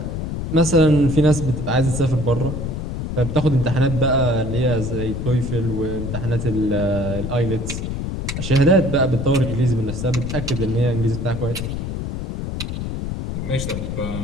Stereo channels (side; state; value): left; noise; rumble, 4 dB below the sound